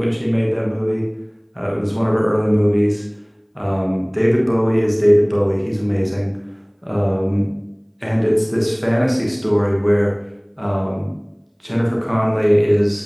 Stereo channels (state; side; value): identical; both; correlation 1.00